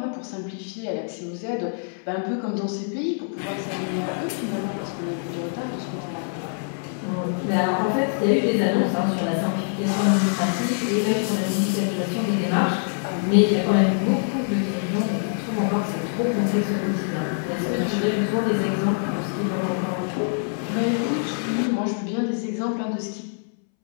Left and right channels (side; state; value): right; silent; 62 dB below the other